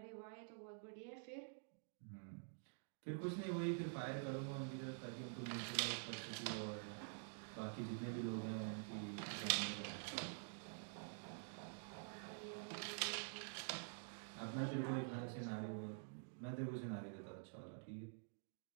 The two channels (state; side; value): silent; left; digital silence